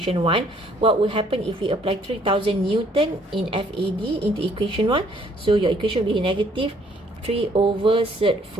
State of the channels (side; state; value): both; normal; correlation 0.63